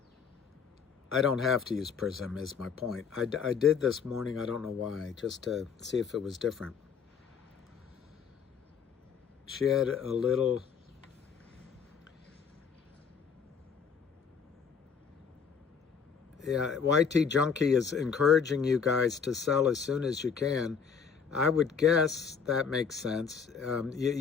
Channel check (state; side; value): quieter; right; 6.4 dB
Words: I don't have to use Prism is my point. I did this morning, I don't know why, just to see if it was different. She had a little. Yeah, YT Junkie is encouraging you guys to sell as soon as you can. I would guess that makes sense.